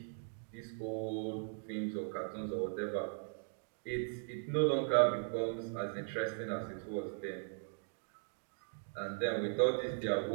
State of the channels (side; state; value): left; silent; digital silence